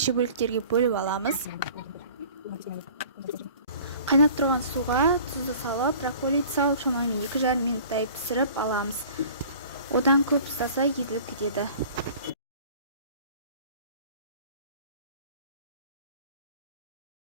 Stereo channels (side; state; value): both; inverted; correlation -0.47